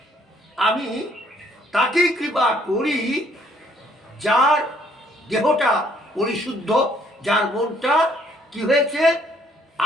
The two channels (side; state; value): both; normal; correlation 0.64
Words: আমি তাকেই কৃপা করি যার দেহটা পরিশুদ্ধ, যার মনটা কি হয়েছে